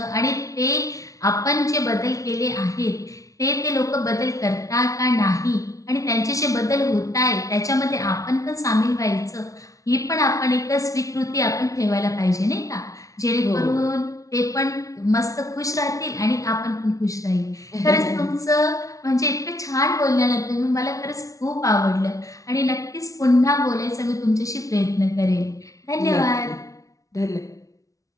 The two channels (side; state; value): right; late; 0.16 ms